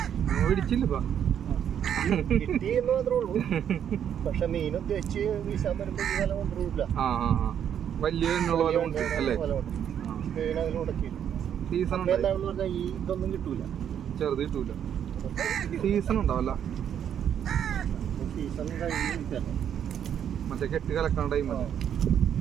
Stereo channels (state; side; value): quieter; left; 9.1 dB